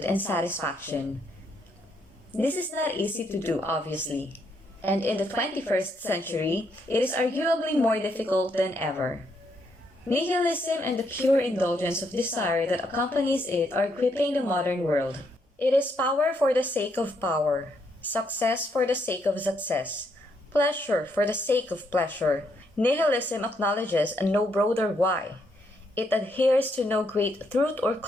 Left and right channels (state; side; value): normal; both; correlation 0.75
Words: and satisfaction. This is not easy to do, obviously. And in the 21st century, it is arguably more difficult than ever. Nihilism and the pure indulgence of desire that accompanies it are gripping the modern world. It is power for the sake of power, success for the sake of success, pleasure for the sake of pleasure. Nihilism acknowledges no broader why. It adheres to no great truth or